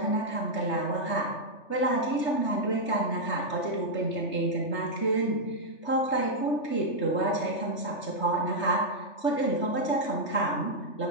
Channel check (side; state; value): right; late; 3.3 ms